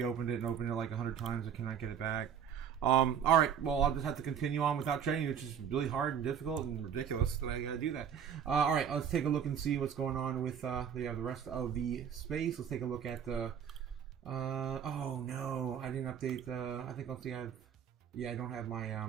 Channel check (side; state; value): left; quieter; 8.2 dB